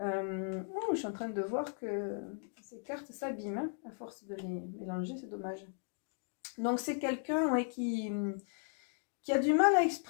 suis en train de voir que ces cartes s'abîment, hein, à force de les mélanger, c'est dommage. Donc c'est quelqu'un ouais, qui a du mal à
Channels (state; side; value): silent; right; 53 dB below the other